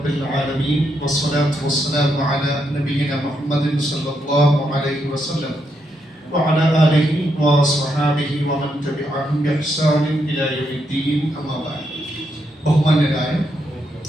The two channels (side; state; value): both; normal; correlation 0.80